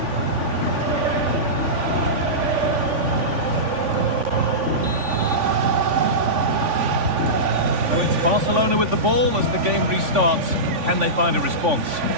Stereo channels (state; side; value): late; left; 3.5 ms